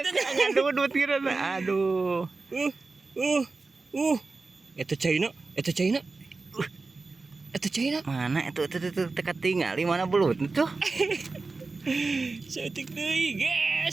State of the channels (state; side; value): quieter; left; 3.8 dB